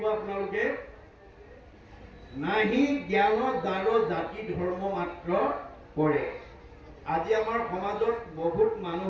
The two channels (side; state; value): both; identical; correlation 1.00